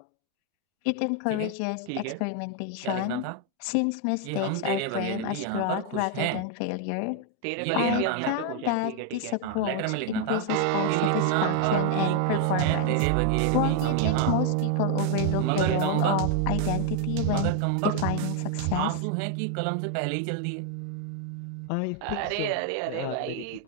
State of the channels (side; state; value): both; different; correlation 0.00